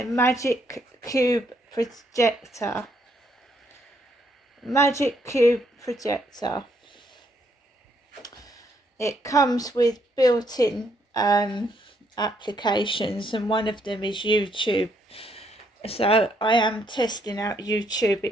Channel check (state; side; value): normal; both; correlation 0.72